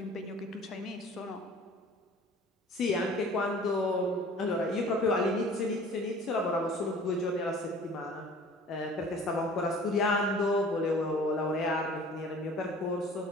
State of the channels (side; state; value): both; normal; correlation 0.46